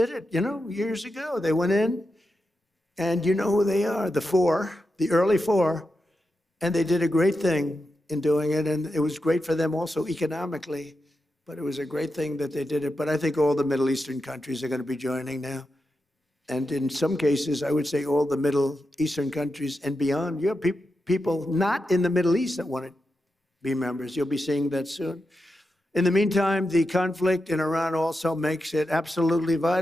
it, years ago. They went in, and you know who they are, the early four, and they did a great thing in doing it, and it was great for them also economically, but it was a great thing that they did it. But I think all the Middle Eastern countries are going to be joining now. And in some cases, I would say all the Middle Eastern countries and beyond. You have people not in the Middle East that want to be members. You'll be seeing that soon. In the meantime, the conflict in Iran also makes it absolutely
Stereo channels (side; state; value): both; normal; correlation 0.88